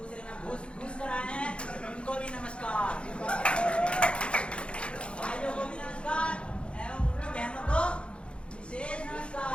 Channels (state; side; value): late; right; 0.058 ms